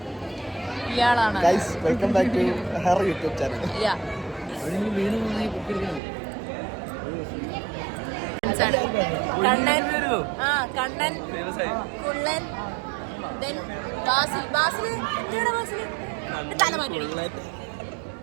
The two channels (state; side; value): drops out; left; at 6.0 s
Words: ഇയാളാണ് കണ്ണൻ, കണ്ണൻ, കുള്ളൻ, Then ബാസിൽ എന്തിനാ ബാസിൽ തല മാറ്റി